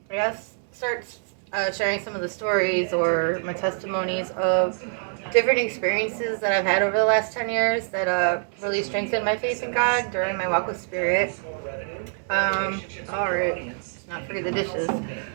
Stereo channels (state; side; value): silent; left; 62 dB below the other